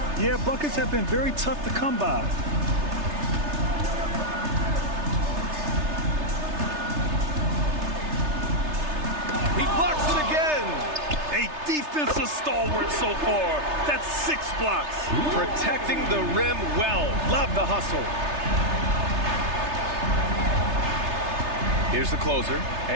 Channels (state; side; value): late; left; 3.3 ms